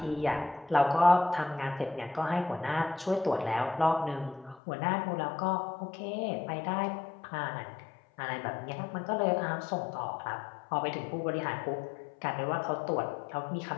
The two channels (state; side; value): drops out; right; at 4.6 s